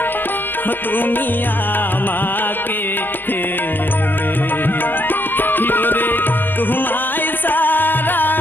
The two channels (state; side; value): late; right; 0.093 ms